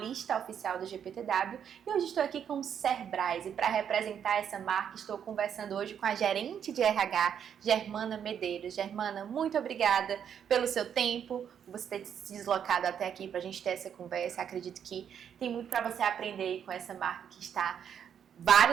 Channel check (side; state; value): left; quieter; 8.4 dB